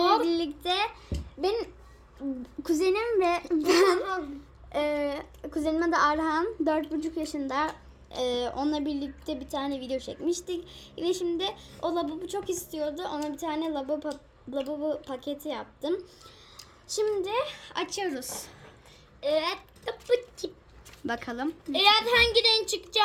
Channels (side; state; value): both; identical; correlation 1.00